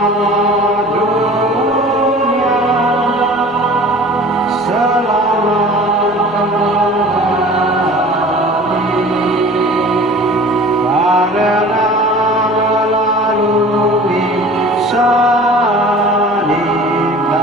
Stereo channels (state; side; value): normal; both; correlation 0.43